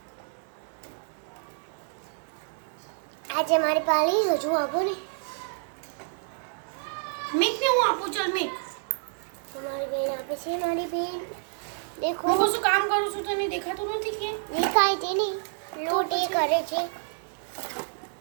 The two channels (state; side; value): silent; left; 59 dB below the other